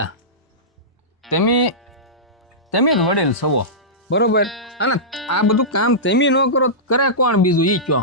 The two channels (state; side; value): normal; both; correlation -0.16